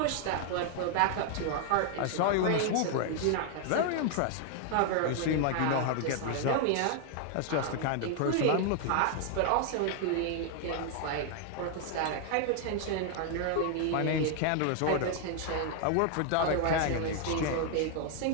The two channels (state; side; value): different; both; correlation 0.00